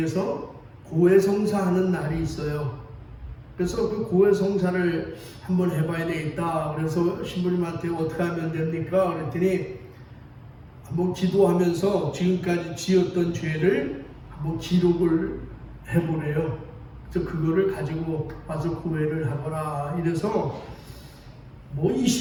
고해성사 하는 날이 있어요. 그래서 그 고해성사를 한번 해봐야 되겠다. 그래서 신부님한테 어떻게 하면 됩니까? 그랬더니 한번 기도하면서 지금까지 지었던 죄를 한번 기록을 해보래요. 그래서 그거를 가지고 와서 고해를 하거라. 이래서 뭐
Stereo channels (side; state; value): both; identical; correlation 1.00